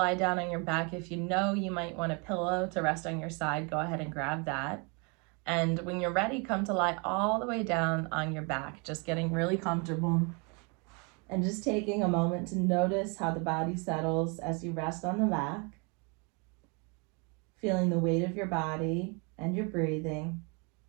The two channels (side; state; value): left; quieter; 32.8 dB